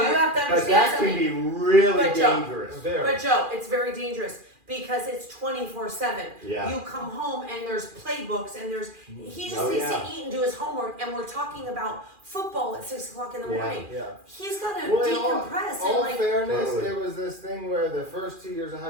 have to understand But that something. can be really dangerous. But Joe, it's very dangerous because it's 24/7. Yeah. You come home and there's playbooks and he just needs to eat and do his homework, and we're talking about football at 6:00 in the morning. He's got to decompress. All and fairness, it was this thing where the first 2 years of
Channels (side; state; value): left; late; 2.4 ms